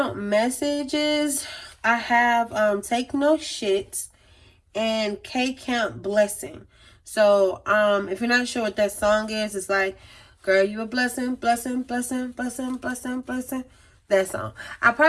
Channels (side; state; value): both; identical; correlation 1.00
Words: messages, I have Take No Shit and K Count Blessing. So if you're not sure what that song is, it's like, girl, you a blessing, blessing, blessing, blessing, blessing, blessing. That song. I'll